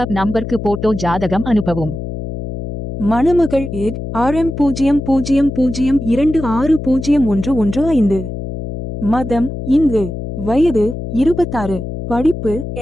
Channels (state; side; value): noise; left; hum, 7 dB below the sound